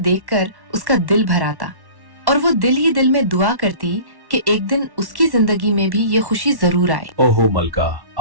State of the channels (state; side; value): late; left; 1.1 ms